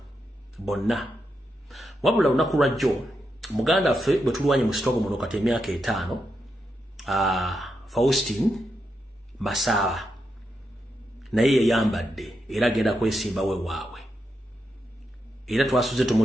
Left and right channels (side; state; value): both; normal; correlation 0.85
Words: bonna wabula lunaku lwajjo muganda ffe bwe tulwanye mu sitogo muno kati emyaka 5 Faustin Masaba naye yayambadde era agenda kwesimba we waabwe era twasuze